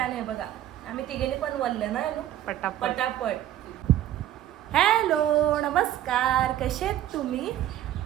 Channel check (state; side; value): quieter; left; 12.2 dB